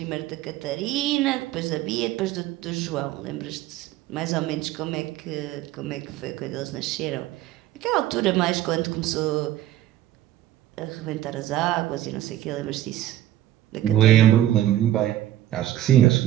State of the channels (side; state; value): left; quieter; 13.4 dB